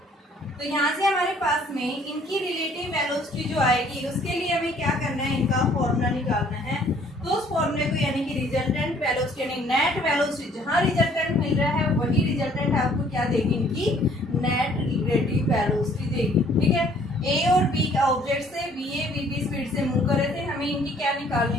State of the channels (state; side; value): normal; both; correlation 0.59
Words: तो यहाँ से हमारे पास में इनकी रिलेटिव वेलोसिटी जो आएगी उसके लिए हमें क्या करना है? इनका फॉर्मूला निकालना है। तो उस फॉर्मूले को यानी कि रिजल्टेंट वेलोसिटी यानी नेट वेलोसिटी, जहाँ रिजल्टेंट मिल रहा है वही रिजल्टेंट आपको क्या देगी? इनकी नेट रिलेटिव वेलोसिटी देगी। ठीक है, ए और बी का ऑब्जेक्ट से B A B B speed से मूव कर रहे थे, हमें इनकी क्या